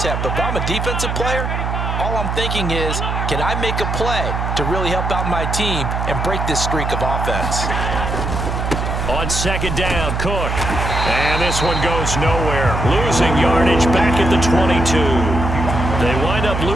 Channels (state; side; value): noise; right; hum, 2 dB below the sound